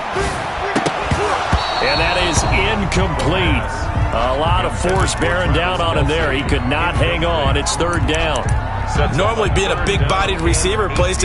And that is incomplete. A lot of force bearing down on him there. He could not hang on. It's third down. Normally being a big-bodied receiver plays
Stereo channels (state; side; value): identical; both; correlation 1.00